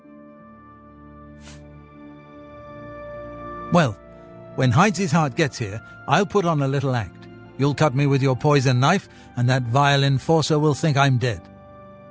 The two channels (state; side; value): identical; both; correlation 1.00